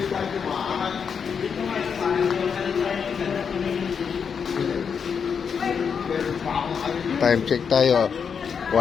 Time check tayo.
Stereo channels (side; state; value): right; quieter; 6.6 dB